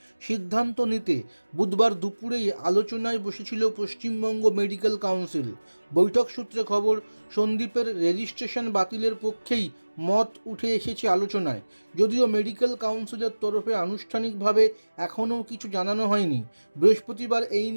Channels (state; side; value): inverted; both; correlation -1.00